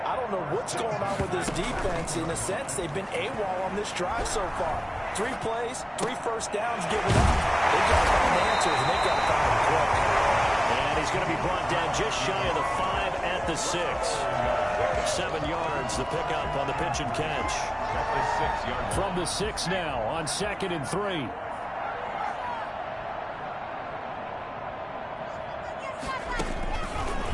I don't know what's going on with this defense. In a sense, they've been AWOL on this drive so far. 3 plays, 3 first downs given up. They've got to find answers, and they've got to find them quick. And he's going to be brought down just shy of the 5 at the 6. 7 yards, the pickup on the pitch and catch. From the 6 now on 2nd and 3.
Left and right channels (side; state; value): both; identical; correlation 1.00